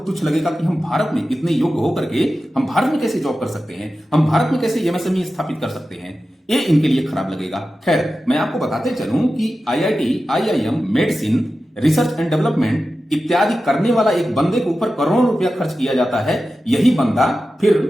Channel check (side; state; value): both; normal; correlation 0.93